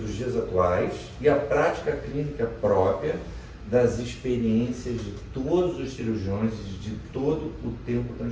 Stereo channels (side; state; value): both; identical; correlation 1.00